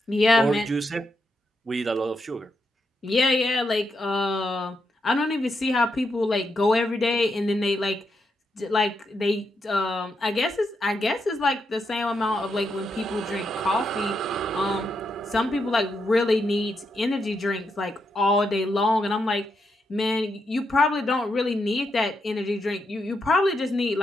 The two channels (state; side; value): normal; both; correlation 0.82